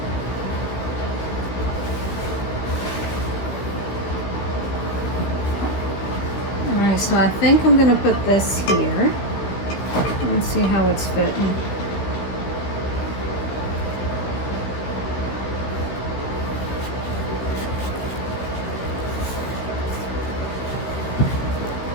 Alright, so I think I'm going to put this here. Let's see how it's fitting.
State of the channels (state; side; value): late; right; 16 ms